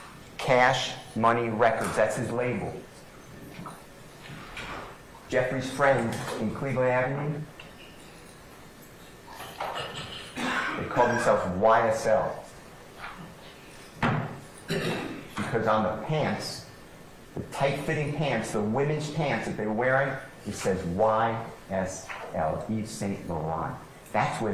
Cash Money Records. That's his label. Jeffrey's friend in Cleveland Avenue, they called themselves YSL. Because on the pants, the tight-fitting pants, the women's pants that they're wearing, it says YSL, Yves Saint Laurent. That's where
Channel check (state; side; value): identical; both; correlation 1.00